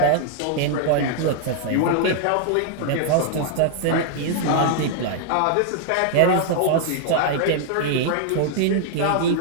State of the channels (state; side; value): different; both; correlation 0.00